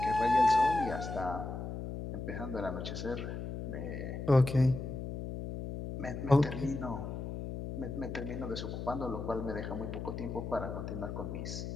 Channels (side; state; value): left; noise; hum, 6 dB below the sound